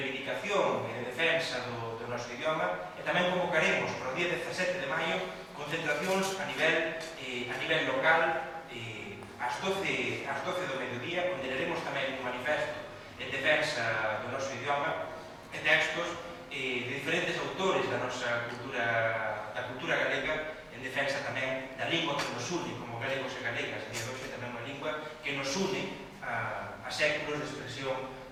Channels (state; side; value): identical; both; correlation 1.00